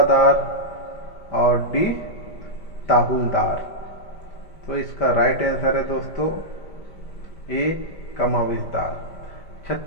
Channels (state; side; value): late; right; 5.1 ms